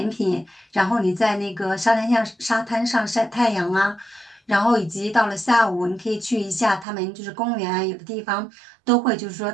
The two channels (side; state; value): left; drops out; at 6.9 s